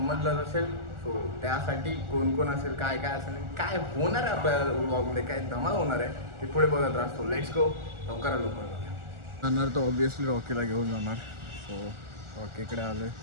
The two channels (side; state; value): left; late; 1.4 ms